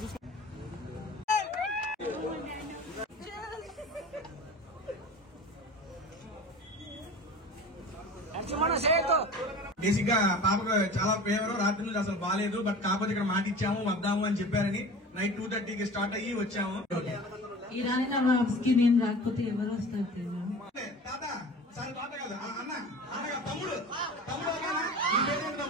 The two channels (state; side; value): normal; both; correlation 0.38